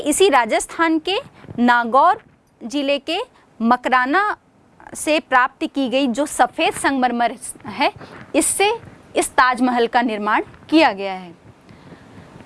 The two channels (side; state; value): both; identical; correlation 1.00